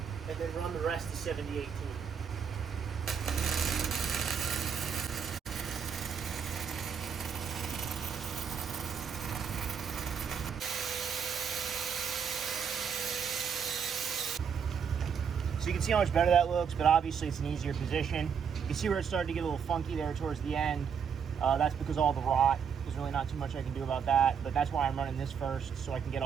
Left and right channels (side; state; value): left; quieter; 7.1 dB